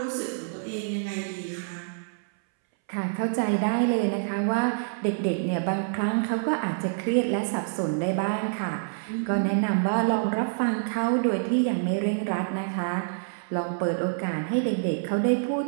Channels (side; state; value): left; silent; 60 dB below the other